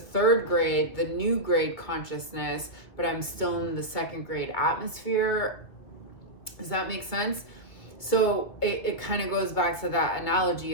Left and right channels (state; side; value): late; right; 2.1 ms